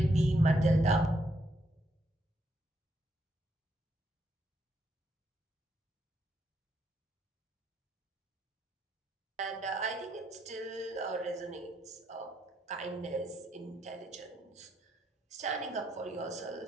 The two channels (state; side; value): normal; both; correlation 0.76